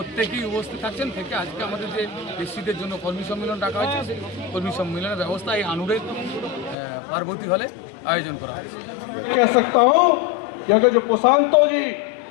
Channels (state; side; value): drops out; right; at 6.8 s